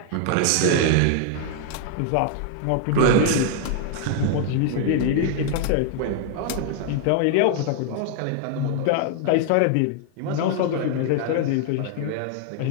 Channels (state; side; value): different; both; correlation 0.00